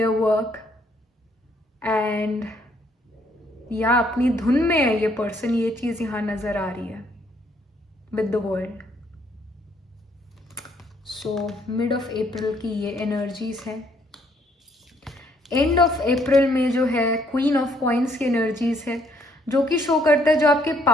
work, and या अपनी धुन में है ये person. ये चीज़ यहाँ नज़र आ रही है with the world. So mid of April की ये energies हैं. एंड ऑफ अप्रैल में जो है क्वीन ऑफ कॉइन्स की एनर्जीज है, जो कि शो करता है जो आपके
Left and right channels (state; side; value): normal; both; correlation 0.67